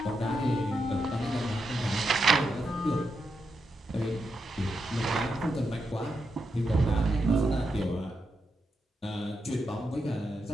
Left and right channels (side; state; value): both; normal; correlation 0.84